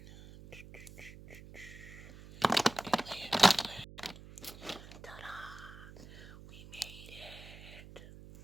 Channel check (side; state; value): right; noise; hum, 16 dB below the sound